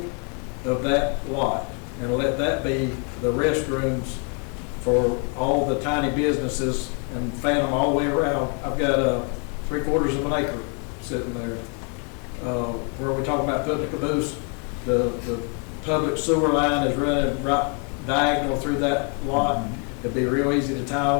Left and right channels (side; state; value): right; quieter; 38.6 dB